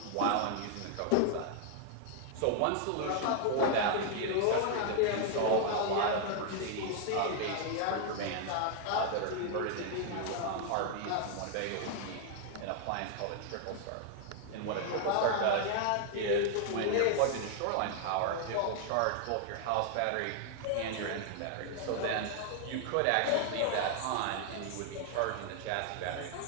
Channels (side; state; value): both; different; correlation 0.00